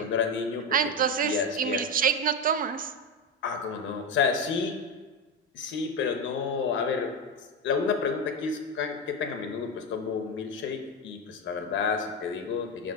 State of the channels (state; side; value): normal; both; correlation 0.14